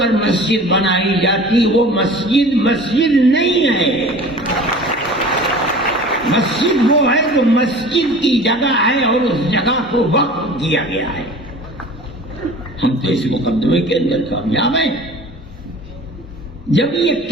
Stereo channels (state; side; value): normal; both; correlation 0.42